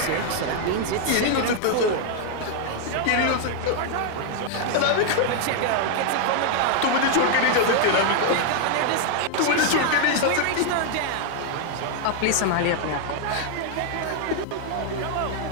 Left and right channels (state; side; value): different; both; correlation 0.00